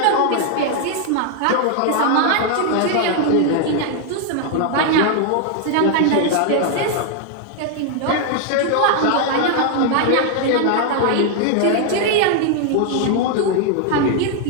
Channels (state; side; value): different; both; correlation 0.00